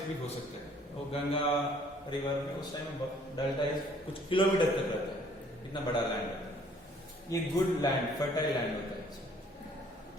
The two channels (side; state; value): both; normal; correlation 0.59